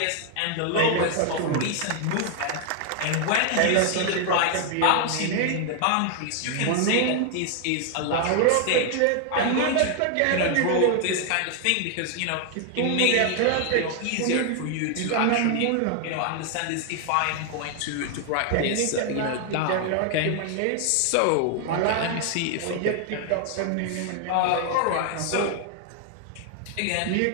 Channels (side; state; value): both; different; correlation 0.00